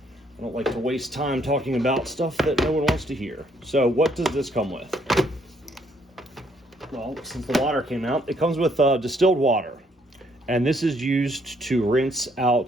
I don't like to waste time talking about stuff that no one wants to hear. So what does this come with? Well, since the water came out, it comes with distilled water. And this is used to rinse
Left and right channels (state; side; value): normal; both; correlation 0.69